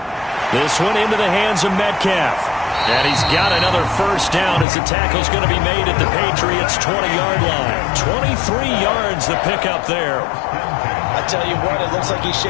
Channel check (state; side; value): drops out; right; at 4.7 s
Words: This one into the hands of Metcalf. And he's got another 1st down as the tackle's going to be made at the Patriots' 20-yard line. 23 yards the pickup there. I tell you what, it looks like he's